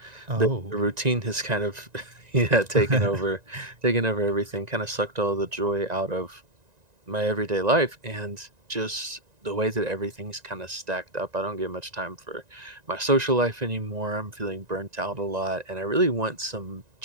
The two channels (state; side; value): late; left; 1.9 ms